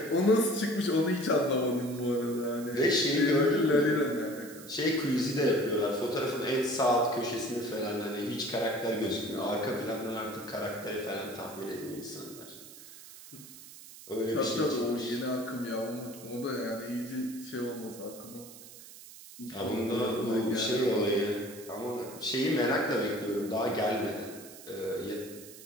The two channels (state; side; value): noise; right; hiss, 17 dB below the sound